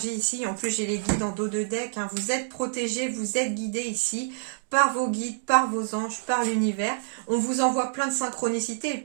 ici. En plus, j'ai les guides en dos de deck, hein. Vous êtes protégés, vous êtes guidés ici par vos guides, par vos anges, par l'univers. On vous envoie plein de synchronicités. Et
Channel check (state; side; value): silent; left; digital silence